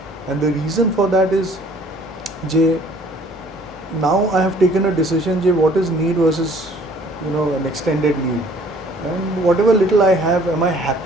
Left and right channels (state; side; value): normal; both; correlation 0.56